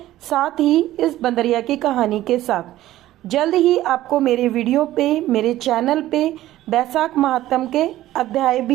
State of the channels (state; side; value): quieter; left; 14.7 dB